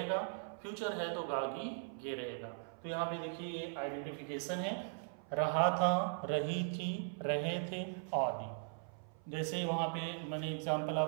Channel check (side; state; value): left; silent; 52 dB below the other